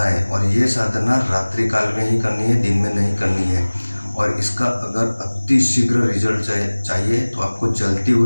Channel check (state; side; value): inverted; both; correlation -1.00